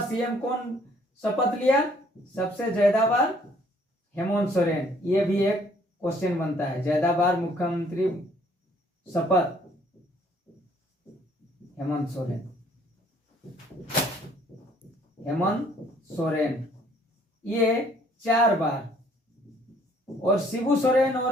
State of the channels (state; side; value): normal; both; correlation 0.61